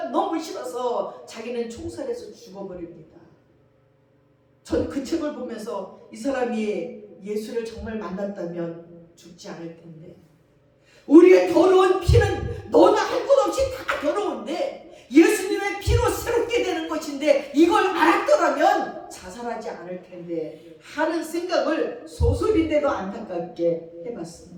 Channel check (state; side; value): identical; both; correlation 1.00